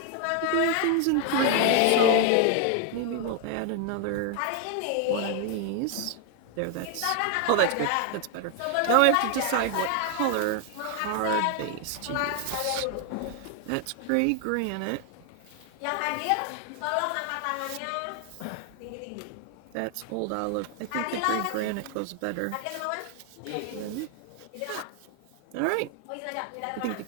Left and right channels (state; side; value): different; both; correlation 0.00